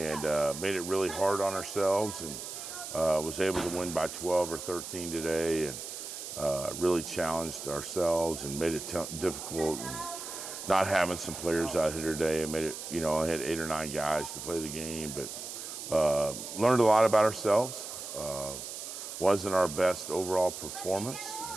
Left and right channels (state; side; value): noise; right; hiss, 8 dB below the sound